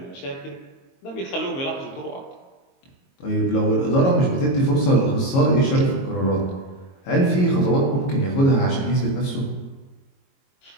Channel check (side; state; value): right; late; 22 ms